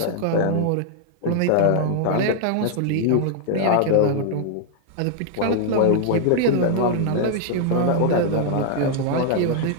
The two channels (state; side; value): different; both; correlation -0.01